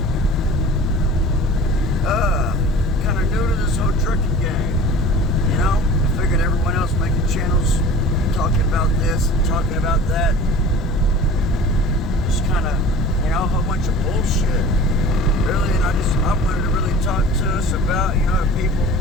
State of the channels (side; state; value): both; normal; correlation 0.41